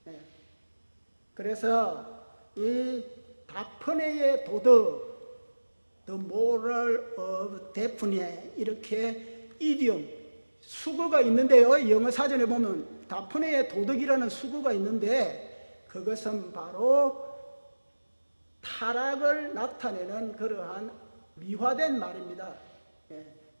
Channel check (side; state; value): both; inverted; correlation -1.00